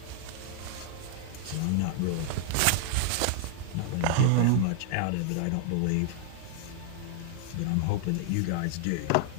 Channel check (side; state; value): both; different; correlation -0.01